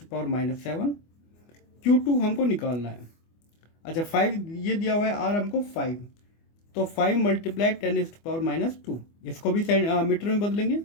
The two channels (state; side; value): late; right; 24 ms